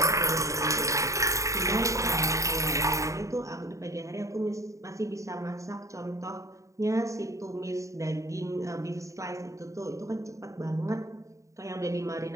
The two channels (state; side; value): late; left; 0.15 ms